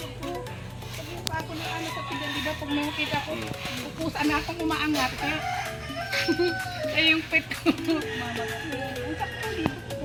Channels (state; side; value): identical; both; correlation 1.00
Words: ko. Sabi pa ako na ano sa pigan, di ba? Pag nakita ko, pupusan na akong umaangat. Kaya yung pet ko. Ang sakto dito ko.